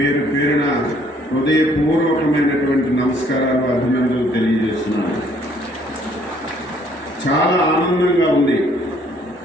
పేరున హృదయపూర్వకమైనటువంటి నమస్కారాలు, అభినందనలు తెలియజేస్తున్నాను. చాలా ఆనందంగా ఉంది.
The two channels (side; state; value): both; normal; correlation 0.62